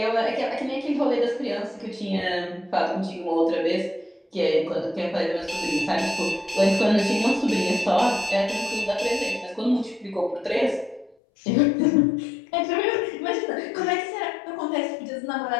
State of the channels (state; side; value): drops out; right; at 11.2 s